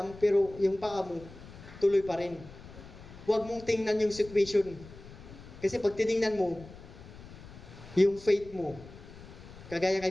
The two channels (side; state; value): left; noise; rumble, 17 dB below the sound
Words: pero yung paa mo, tuloy pa rin. Huwag mong tingnan yung situation. Kasi pag tinignan mo, yung faith mo, kagaya